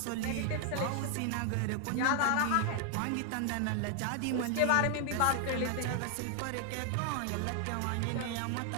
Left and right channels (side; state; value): both; different; correlation 0.00